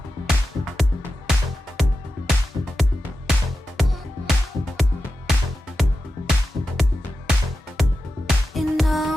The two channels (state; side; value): normal; both; correlation 0.92